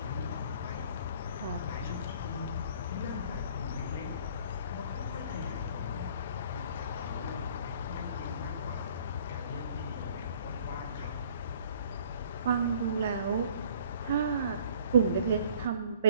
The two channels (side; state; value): both; inverted; correlation -0.55